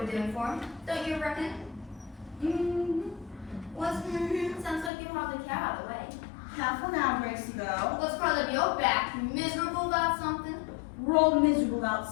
we're doing for them. Don't you reckon? What's sounds like you hardly care out of the way. Careful now, Gracie girl. What's curled up your back? You miserable about something? We're all miserable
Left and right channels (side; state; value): right; drops out; at 4.9 s